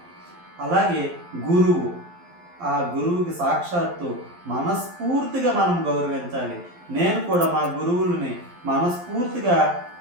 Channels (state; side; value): late; left; 11 ms